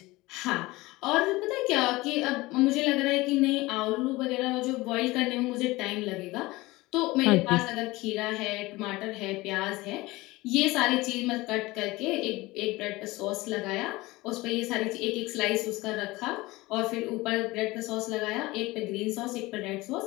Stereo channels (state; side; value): quieter; right; 20.6 dB